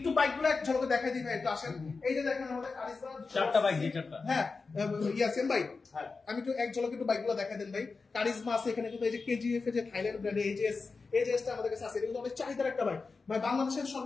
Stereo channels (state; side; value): quieter; right; 4.3 dB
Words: বাইকগুলো এক ঝলকে দেখাই দিই ভাই, একটু আসেন। এই যে দেখেন আমাদের কারিজমা 4টা বাইক, 4টা। হ্যাঁ ইয়াসিন ভাই, আমি একটু এক ঝলকে একটু বাইকগুলো দেখাই দেন ভাই। কারিজমা আছে এখানে, কিন্তু এই যে কেজিএফ এর যে থাইল্যান্ড ব্র্যান্ডের এজেসটা আমাদের কাছে আছে, এটা কিন্তু অনেক চাহিদার একটা বাইক ভাই। বাংলাদেশের